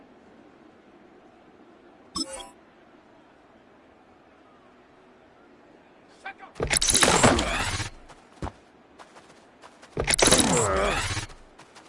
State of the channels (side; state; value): both; identical; correlation 1.00